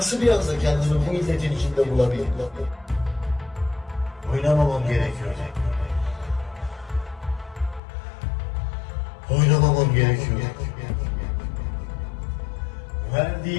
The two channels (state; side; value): drops out; right; at 7.8 s